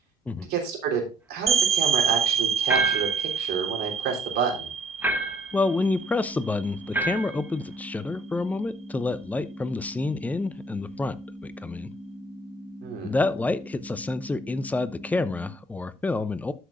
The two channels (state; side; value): normal; both; correlation 0.64